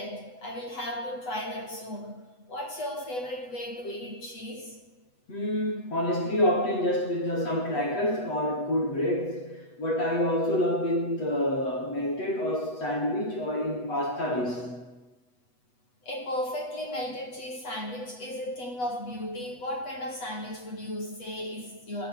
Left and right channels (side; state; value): right; late; 8.1 ms